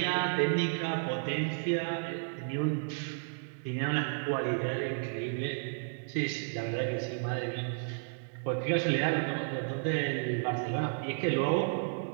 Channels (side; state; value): left; silent; 56 dB below the other